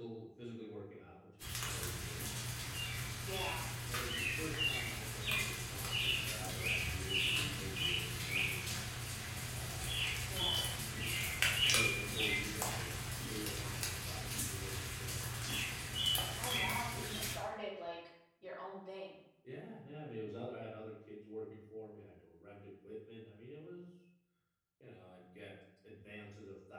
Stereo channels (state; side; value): identical; both; correlation 1.00